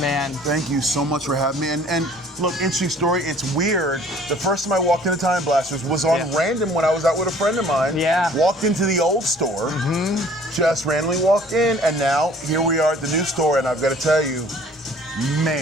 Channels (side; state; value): both; normal; correlation 0.53